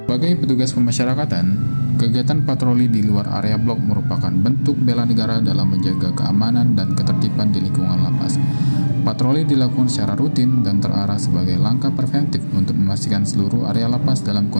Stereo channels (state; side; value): inverted; both; correlation -1.00